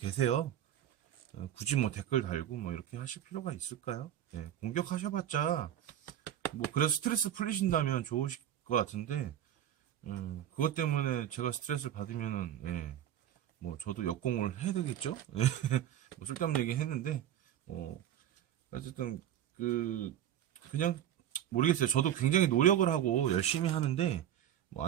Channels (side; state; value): left; quieter; 11.0 dB